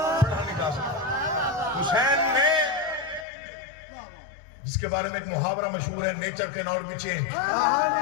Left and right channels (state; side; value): drops out; right; at 3.2 s